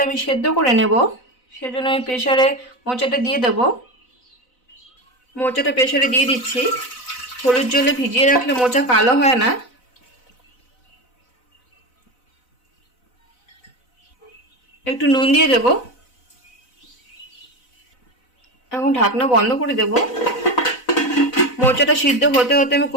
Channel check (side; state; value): right; late; 4.0 ms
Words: আমি সেদ্ধ করে নেব, সেজন্য আমি প্রেসারে মোচাটা দিয়ে দেব। মোচাটা প্রেসারে দিয়ে দিচ্ছি। হলুদ জলে ভিজিয়ে রাখলে মোচা কালো হয় না। একটু নুন দিয়ে দেব। এখন ঢাকনা বন্ধ করে দেব। মোচাটা সিদ্ধ হতে হতে আমি